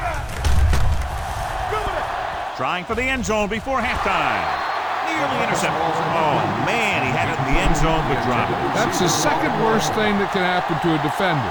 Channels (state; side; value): identical; both; correlation 1.00